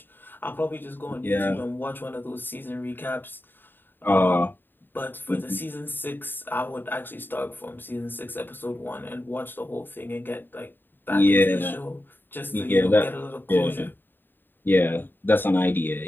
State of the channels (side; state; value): right; late; 0.095 ms